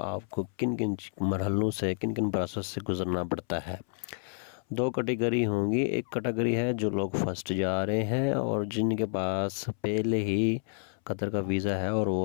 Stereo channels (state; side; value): silent; right; 58 dB below the other